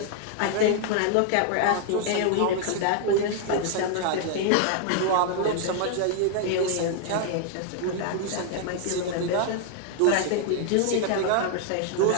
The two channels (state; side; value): different; both; correlation 0.00